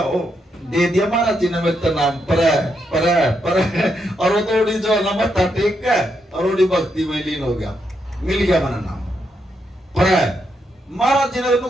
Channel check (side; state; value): both; normal; correlation 0.80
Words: ओ दे दिया महाराज जी ने मेरे नाम पर और वो थोड़ी जो है ना मत्था टेक के और थोड़ी भक्ति में लीन हो गया, मिल गया मेरा नाम पर। महाराज जी ने तो